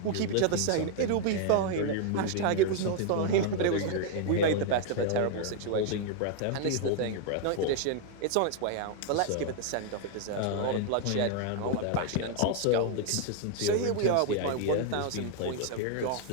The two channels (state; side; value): different; both; correlation 0.00